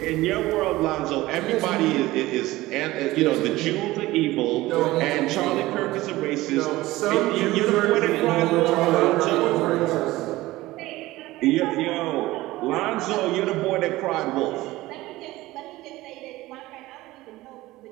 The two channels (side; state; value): left; quieter; 18.1 dB